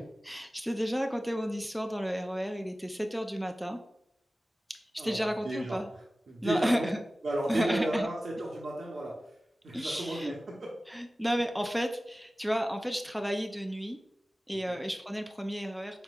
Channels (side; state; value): both; normal; correlation 0.96